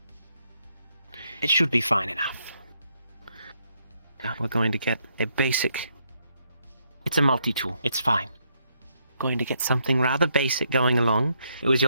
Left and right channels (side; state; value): both; inverted; correlation -0.76